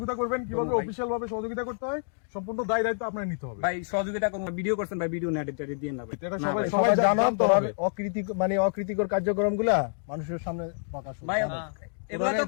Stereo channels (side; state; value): right; silent; digital silence